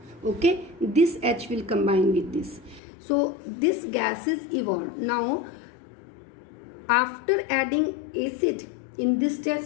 Okay, this H will combine with this. So this gas is evolved. Now after adding acid in this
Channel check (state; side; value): drops out; right; at 2.8 s